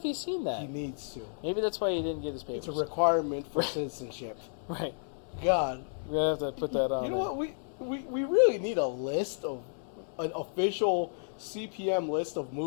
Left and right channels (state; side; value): silent; right; 57 dB below the other